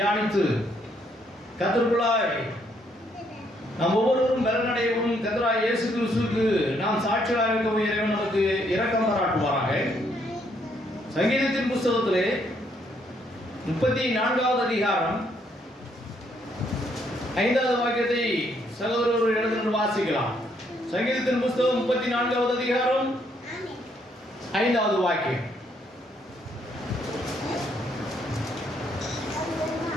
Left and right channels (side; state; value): both; normal; correlation 0.71